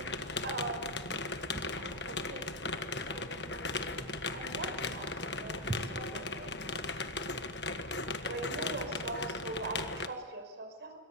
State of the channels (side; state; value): both; normal; correlation 0.05